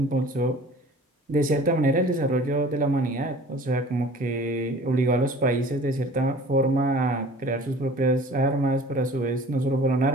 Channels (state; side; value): normal; both; correlation 0.45